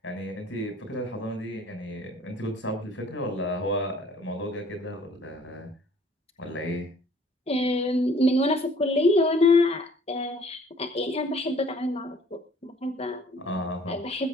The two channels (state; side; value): normal; both; correlation 0.56